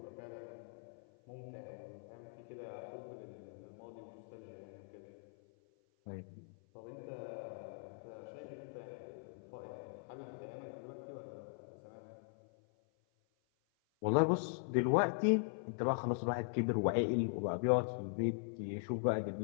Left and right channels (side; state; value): right; silent; 50 dB below the other